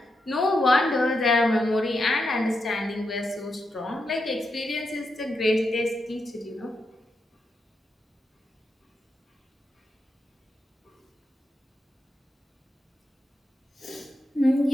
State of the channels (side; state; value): both; normal; correlation 0.85